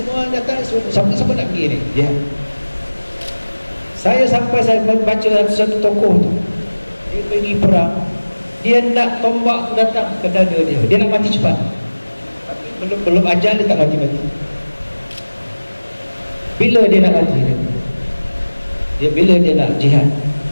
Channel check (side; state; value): both; inverted; correlation -1.00